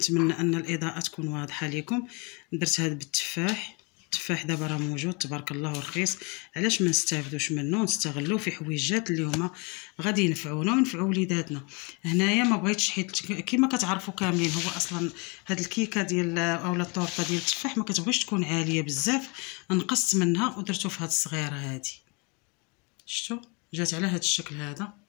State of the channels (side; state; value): right; quieter; 31.1 dB